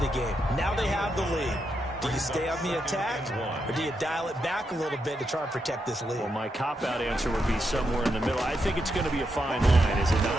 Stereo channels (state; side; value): normal; both; correlation 0.83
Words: game. Now they have the lead. Do you stay on the attack, or do you dial it back a little bit to try and protect this lead? Well, my cop-out answer would be somewhere in the middle. I think it's going to be a fine line, is it